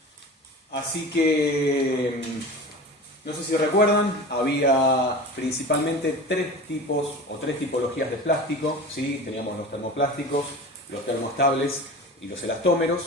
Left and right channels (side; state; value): both; normal; correlation 0.34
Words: Así que, no sé si recuerdan, había principalmente tres tipos o tres tipologías de plástico, ¿sí? Teníamos los termoplásticos, los termoestables y los